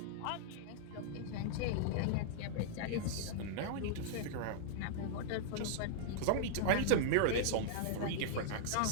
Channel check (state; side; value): different; both; correlation -0.01